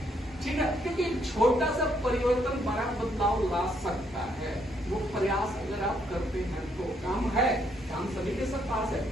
ठीक है? क्योंकि छोटा सा परिवर्तन बड़ा बदलाव ला सकता है। वो प्रयास अगर आप करते हैं तो काम है, काम सभी के सब पास है,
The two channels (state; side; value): normal; both; correlation 0.72